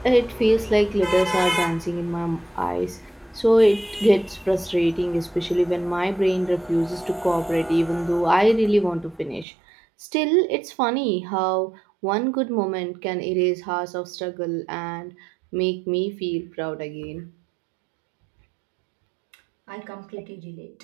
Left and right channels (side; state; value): left; drops out; at 9.5 s